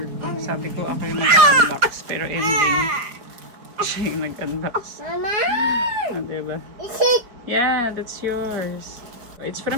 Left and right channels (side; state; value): left; late; 4.5 ms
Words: ko. Sabi ko ako yung mag-unbox. Pero ending, siya yung nag-unbox. Mama! Oh, diba? Is it? Yeah, that's yours. It's